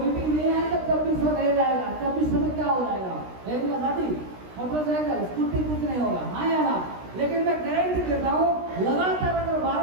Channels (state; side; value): late; left; 16 ms